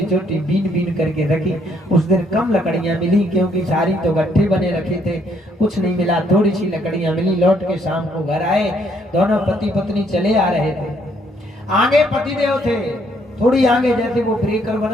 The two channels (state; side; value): normal; both; correlation 0.69